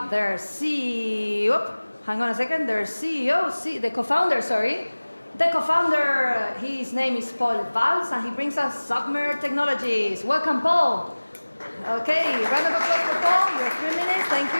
their CEO, hang on a second, their CEO, the co-founder, sorry. The co-founder, his name is Paul Valls, and he brings us Submer Technologies. Welcome, Paul. Okay, round of applause for Paul. Your 3 minutes, thank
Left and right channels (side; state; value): both; inverted; correlation -1.00